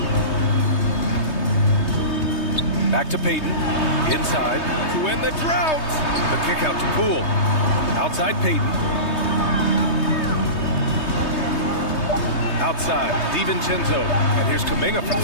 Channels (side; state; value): right; late; 3.2 ms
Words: Back to Payton. Inside to win the drought. The kick out to Poole. Outside Payton. Outside, DiVincenzo. And here's Kuminga for